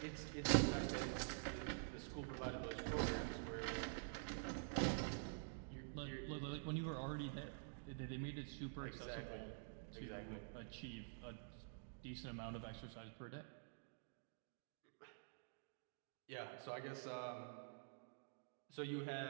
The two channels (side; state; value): left; silent; digital silence